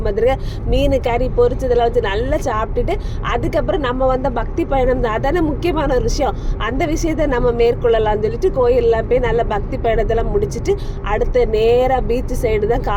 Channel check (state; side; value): identical; both; correlation 1.00